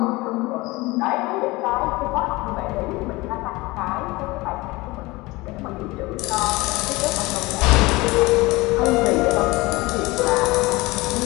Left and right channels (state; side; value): quieter; right; 21.9 dB